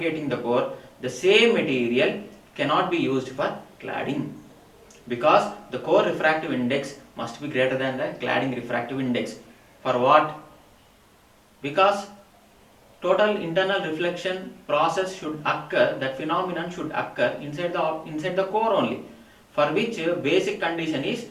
the core, the same material cannot be used for cladding, because the core refractive index must be greater than the cladding refractive index. For what? Because total internal reflection process should occur, that phenomenon should occur inside the core only, for which basic condition is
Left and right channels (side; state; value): both; identical; correlation 1.00